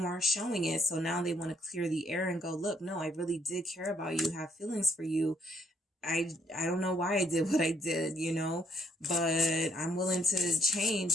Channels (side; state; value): both; normal; correlation 0.69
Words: showing it. So now they want to clear the air and go, look, no, I really did care about you, have feelings for you. I don't know why I did what I did, but I'm willing to